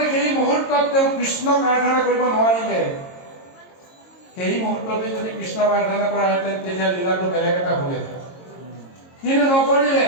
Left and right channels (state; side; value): late; right; 22 ms